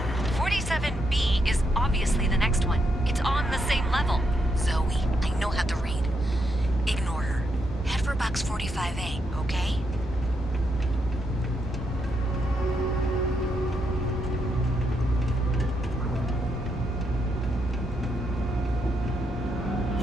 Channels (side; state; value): both; normal; correlation 0.80